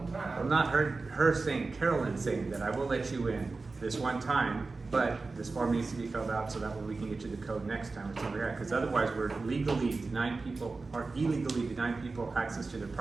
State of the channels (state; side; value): quieter; left; 3.8 dB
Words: Well, time. not her saying, Carolyn saying that I will let you in this one time, but this form needs to be filled out so that way we can get you the code next time or something like that. Because otherwise, we're legally denying people, or illegally denying people access to their